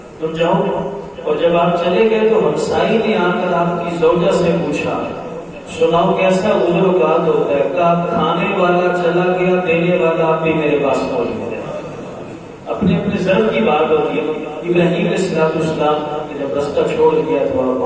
تم جاؤ۔ اور جب آپ چلے گئے تو ہمسائی نے آ کر آپ کی زوجہ سے پوچھا، سناؤ کیسا عذر و قات ہوتا ہے؟ کہا کھانے والا چلا گیا، دینے والا آپ بھی میرے پاس پہنچ گیا۔ اپنے اپنے ضرب کی بات ہوتی ہے۔ ابراہیم علیہ السلام نے جب رستہ چھوڑ دیا تو آپ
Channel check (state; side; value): identical; both; correlation 1.00